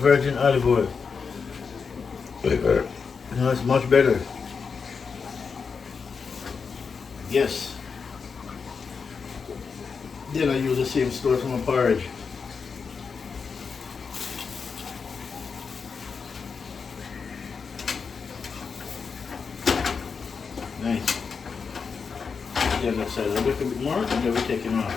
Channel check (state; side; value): quieter; right; 5.5 dB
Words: olive oil. It's much better. Yes. Then I use the same stuff from a porridge. Nice. The other side a little bit more, and then we take it